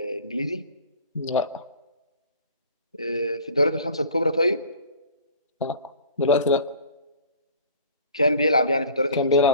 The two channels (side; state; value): both; inverted; correlation -0.45